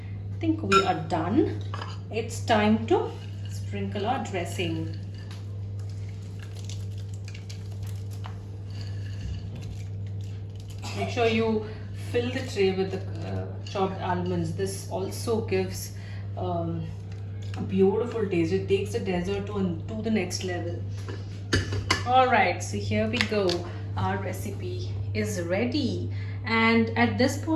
think we are done. It's time to sprinkle our dressing. Make sure you fill the tray with the chopped almonds. This also gives a beautiful taste. It takes the dessert to the next level. All right, so here we go. Our recipe is ready, and at this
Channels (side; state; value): both; identical; correlation 1.00